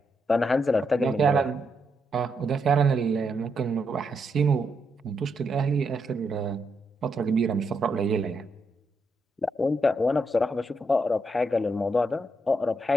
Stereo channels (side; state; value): both; normal; correlation 0.80